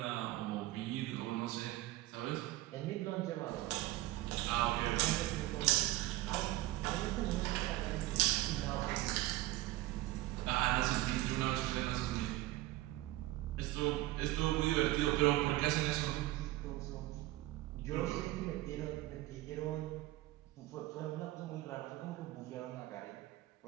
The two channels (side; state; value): left; quieter; 16.8 dB